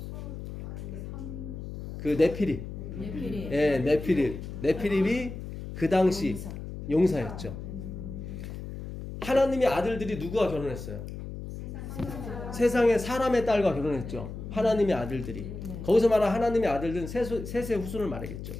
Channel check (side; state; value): left; noise; hum, 9 dB below the sound